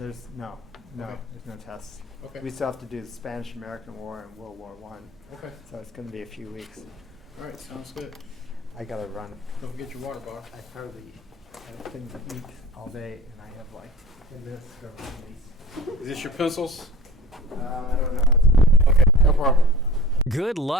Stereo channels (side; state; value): both; normal; correlation 0.40